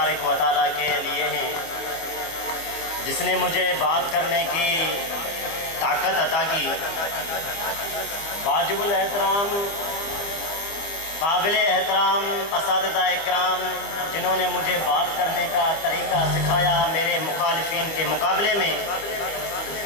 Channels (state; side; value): late; right; 25 ms